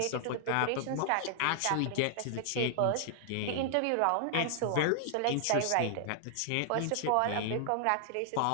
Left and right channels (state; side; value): different; both; correlation 0.00